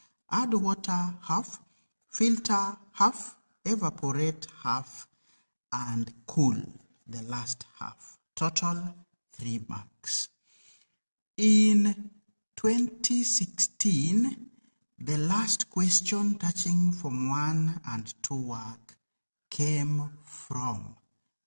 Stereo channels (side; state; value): both; inverted; correlation -1.00